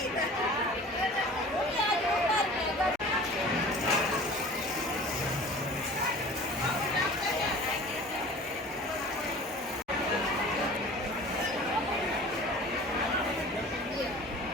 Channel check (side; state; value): both; normal; correlation 0.43